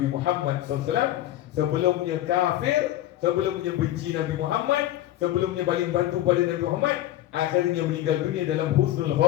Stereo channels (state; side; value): quieter; right; 13.8 dB